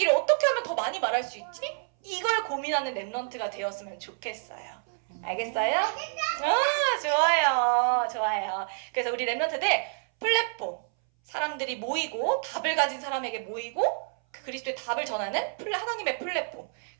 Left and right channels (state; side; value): silent; left; 59 dB below the other